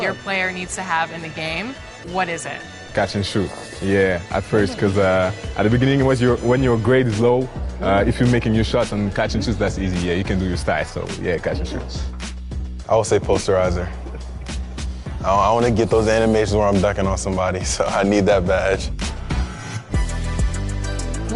your player needs to have in the game, what is it? Catch and shoot. Yeah, at first, because at the beginning, when your grade is low, if you're making your shots and catch and shoots, that's easy. Yeah, you can do your style. So yeah, catch and shoot. I would say posterizer. I want to get those animations where I'm dunking on somebody, so I need that badge.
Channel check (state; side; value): identical; both; correlation 1.00